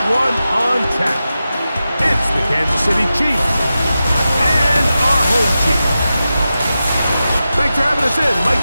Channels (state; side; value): inverted; both; correlation -0.92